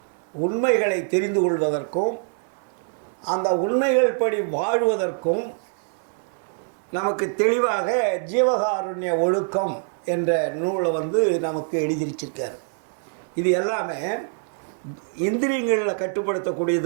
உண்மைகளை தெரிந்து கொள்வதற்கும் அந்த உண்மைகள் படி வாழ்வதற்கும் நமக்கு தெளிவாக ஜீவகாருண்ய ஒழுக்கம் என்ற நூலை நமக்கு எழுதியிருச்சிருக்கார். இது எல்லாமே இந்திரியங்களில்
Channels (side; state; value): left; silent; 62 dB below the other